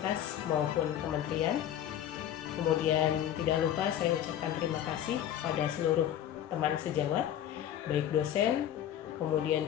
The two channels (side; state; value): right; quieter; 10.9 dB